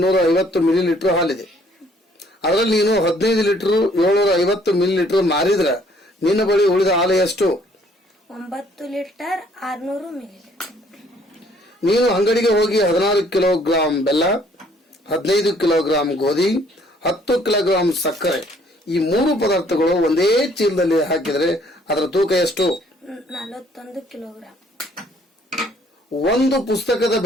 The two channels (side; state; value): both; normal; correlation 0.62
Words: ಮಿಲಿ ಲೀಟರ್ ಹಾಲಿದೆ. ಅದರಲ್ಲಿ ನೀನು 15 ಲೀಟರ್ 750 ಮಿಲಿ ಲೀಟರ್ ಮಾರಿದ್ರೆ ನಿನ್ನ ಬಳಿ ಉಳಿದ ಹಾಲು ಎಷ್ಟು? 9 ಲೀಟರ್ 600 ಮಿಲಿ ಲೀಟರ್. ನೀನು ಅಂಗಡಿಗೆ ಹೋಗಿ 16 ಕಿಲೋಗ್ರಾಂ ಬೆಲ್ಲ, 15 ಕಿಲೋಗ್ರಾಂ ಗೋಧಿ, 10 ಕಿಲೋಗ್ರಾಂ ಸಕ್ಕರೆ, ಈ 3 ಪದಾರ್ಥಗಳು ಒಂದೇ ಚೀಲದಲ್ಲಿ ಹಾಕಿದರೆ ಅದರ ತೂಕ ಎಷ್ಟು? 41 ಕಿಲೋಗ್ರಾಂ. ಒಂದು ಪುಸ್ತಕದ